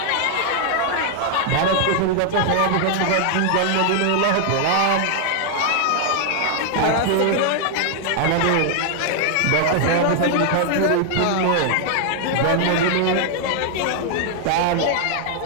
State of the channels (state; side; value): different; both; correlation 0.00